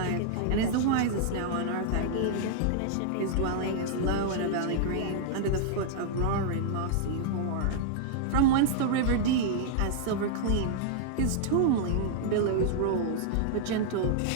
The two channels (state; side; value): different; both; correlation -0.01